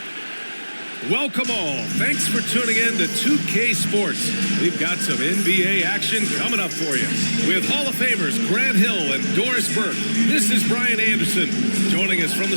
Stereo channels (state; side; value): inverted; both; correlation -1.00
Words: Welcome all. Thanks for tuning in to 2K Sports. We've got some NBA action coming up for you. With Hall of Famers Grant Hill and Doris Burke, this is Brian Anderson. Joining us from